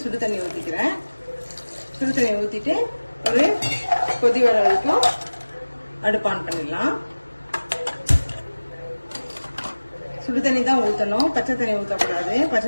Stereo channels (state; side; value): inverted; both; correlation -1.00